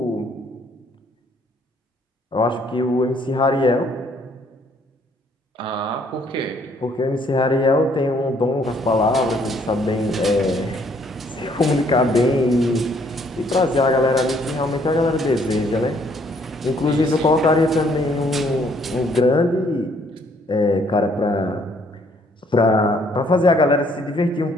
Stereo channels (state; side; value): normal; both; correlation 0.65